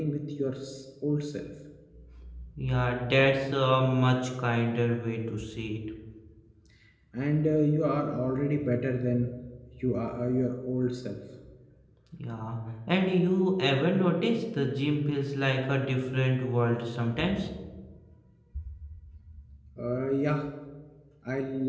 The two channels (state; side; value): identical; both; correlation 1.00